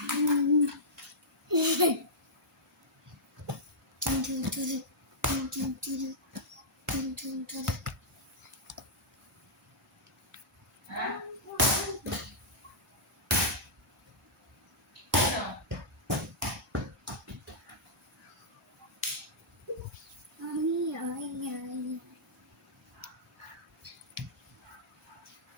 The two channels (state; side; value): normal; both; correlation -0.14